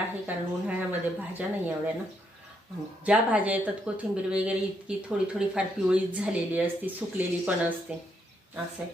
कारण उन्हाळ्यामध्ये भाज्या नाही एवढ्या ना. ज्या भाज्या येतात कोथिंबीर वगैरे इतकी थोडी फार पिवळीच झालेली असते, सुकलेली पण असते. असं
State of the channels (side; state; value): both; normal; correlation 0.76